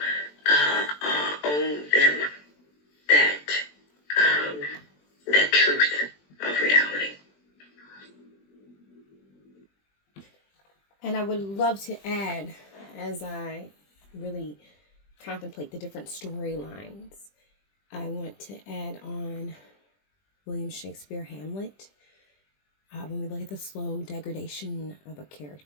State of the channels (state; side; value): late; right; 20 ms